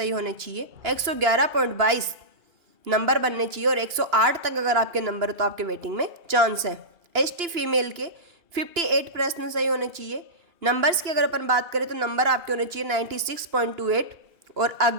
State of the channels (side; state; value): left; late; 2.9 ms